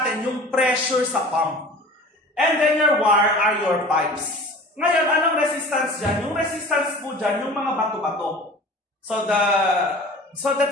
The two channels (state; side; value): normal; both; correlation 0.41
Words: yung pressure sa pump. And then your wire are your pipes. Ngayon, anong resistance dyan? Yung resistance po dyan, yung mga bato-bato. So